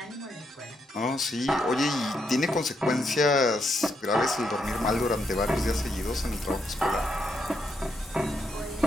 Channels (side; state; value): both; normal; correlation 0.79